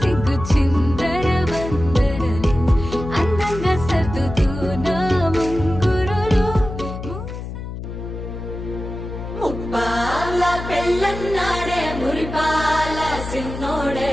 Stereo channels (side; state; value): left; noise; hum, 8 dB below the sound